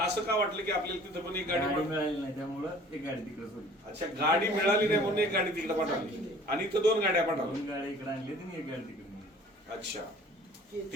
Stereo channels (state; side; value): normal; both; correlation 0.50